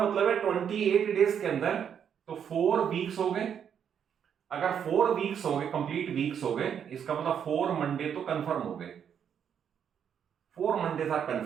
मतलब है 28 डेज के अंदर तो 4 वीक्स हो गए। अगर 4 वीक्स हो गए, कंप्लीट वीक्स हो गए, इसका मतलब 4 मंडे तो कंफर्म हो गए, 4 मंडेज आर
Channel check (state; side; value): quieter; left; 8.2 dB